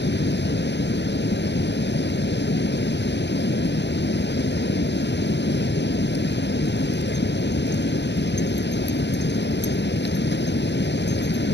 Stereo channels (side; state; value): right; late; 0.50 ms